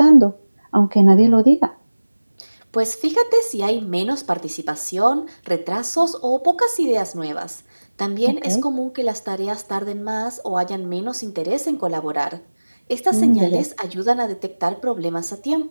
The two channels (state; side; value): inverted; both; correlation -1.00